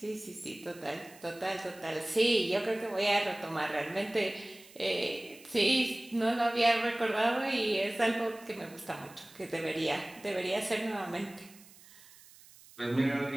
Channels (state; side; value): noise; right; hiss, 22 dB below the sound